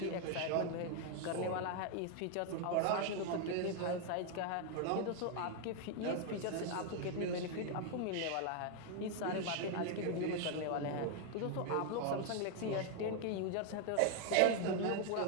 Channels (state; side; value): different; both; correlation 0.00